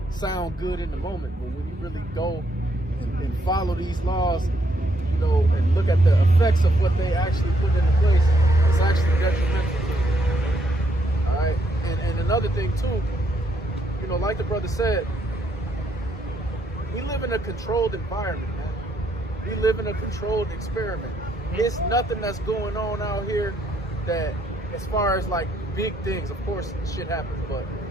sound good in the moment. But when you really go and follow these laws, you know, and look at the effects of what they actually put into place, it's actually detrimental to you. All right. And another thing too, you know, like the brother said, we live in a controlled environment, man. We live in a controlled experiment. There's nothing that's going on out here that, as far as like big things, of course shit happens, but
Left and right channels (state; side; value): normal; both; correlation 0.73